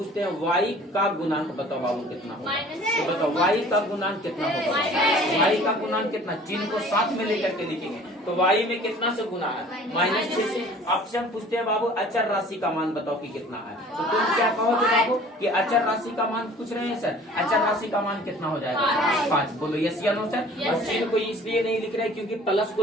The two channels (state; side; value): normal; both; correlation 0.49